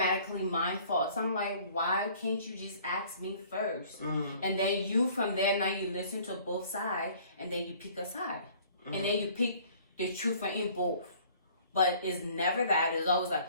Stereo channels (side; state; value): both; inverted; correlation -0.54